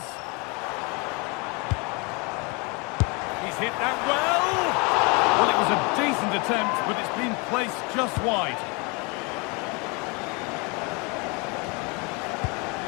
He's hit that well. Well, it was a decent attempt, but it's been placed just wide.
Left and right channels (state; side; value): quieter; right; 29.9 dB